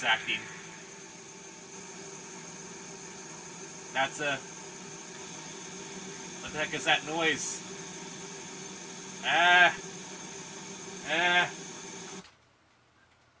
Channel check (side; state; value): both; identical; correlation 1.00